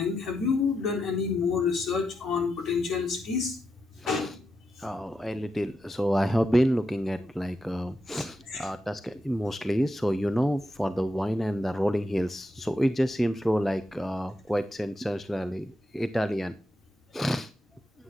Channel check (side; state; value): both; normal; correlation 0.86